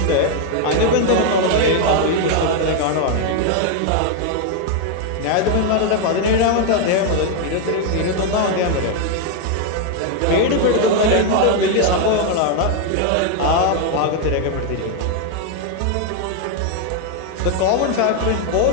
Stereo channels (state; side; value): different; both; correlation 0.01